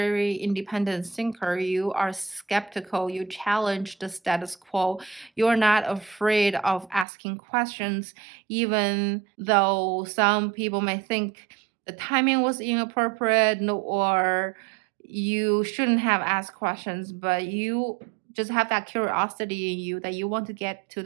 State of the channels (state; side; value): drops out; left; at 7.1 s